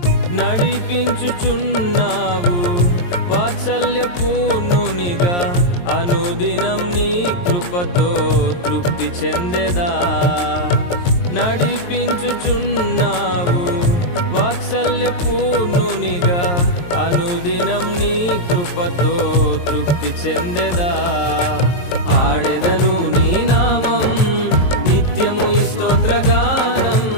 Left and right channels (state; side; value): late; right; 23 ms